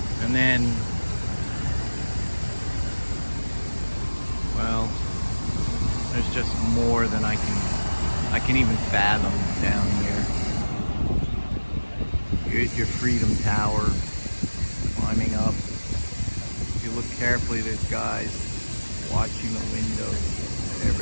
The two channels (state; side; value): inverted; both; correlation -1.00